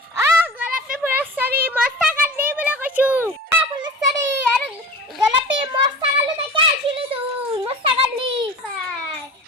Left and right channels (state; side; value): normal; both; correlation 0.36